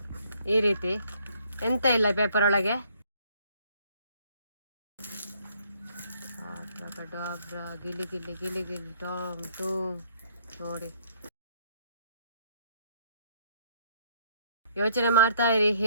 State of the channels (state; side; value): inverted; both; correlation -0.64